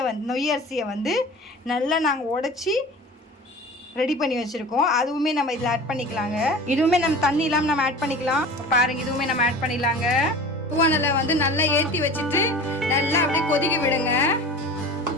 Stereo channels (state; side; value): normal; both; correlation 0.37